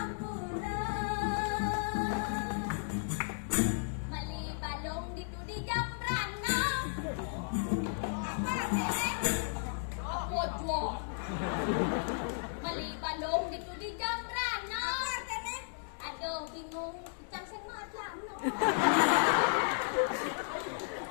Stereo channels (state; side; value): silent; right; digital silence